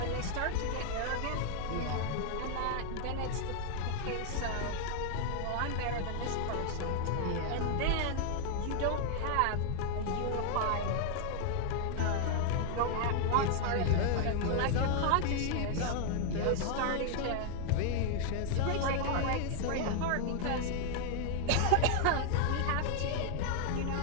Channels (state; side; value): different; both; correlation 0.00